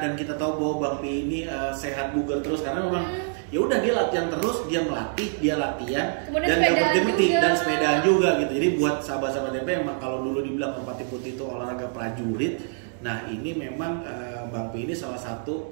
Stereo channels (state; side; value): silent; left; 61 dB below the other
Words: kita tahu bahwa Bang Pi ini sehat bugar terus karena memang ya udah dia latihan terus, dia melatih, dia latihan Kemudian dan nggak sepedaan berhenti juga. dan sepedaan juga gitu. Jadi buat sahabat-sahabat MP emang kalau dulu dibilang Merpati Putih itu olahraga prajurit, nah ini memang Bang Pi ini salah